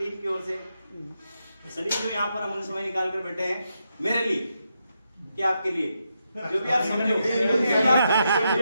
की ओर से सभी जो यहाँ पर अमूल्य समय निकाल कर बैठे हैं, मेरे लिए क्या आपके लिए जो भी आप समझो।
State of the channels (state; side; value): inverted; both; correlation -0.83